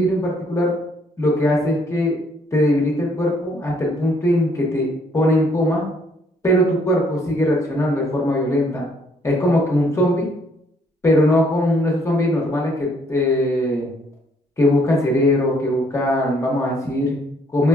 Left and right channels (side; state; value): both; normal; correlation 0.66